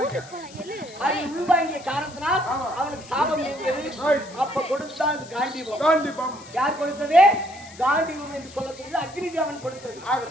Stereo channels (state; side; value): noise; left; hiss, 20 dB below the sound